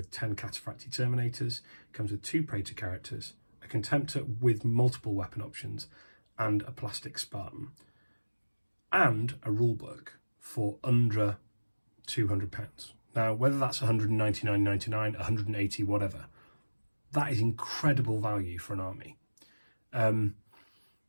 10 Cataphracti Terminators. It comes with 2 Praetor characters, a Contemptor with multiple weapon options, and a plastic Spartan, and a rulebook for under £200. Now, whether that's £199.99, £180, whatever, that is incredible value for an army.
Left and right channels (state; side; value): inverted; both; correlation -1.00